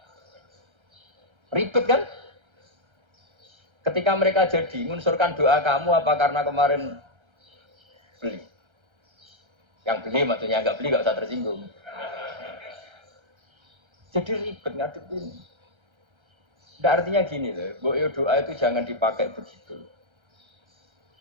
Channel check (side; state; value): left; late; 1.3 ms